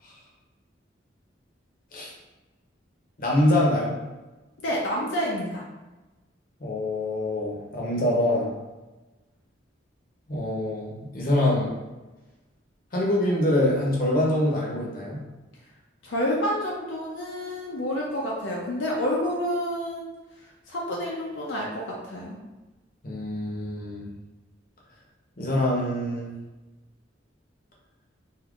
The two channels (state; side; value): normal; both; correlation 0.40